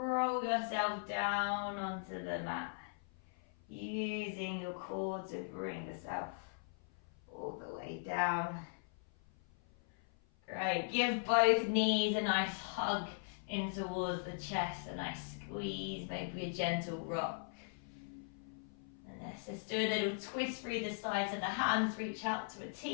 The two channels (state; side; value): silent; right; 52 dB below the other